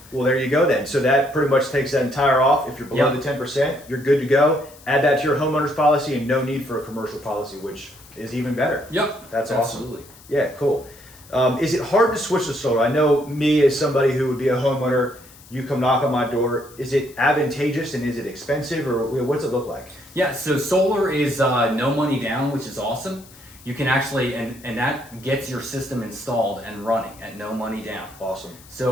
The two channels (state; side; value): noise; left; hiss, 23 dB below the sound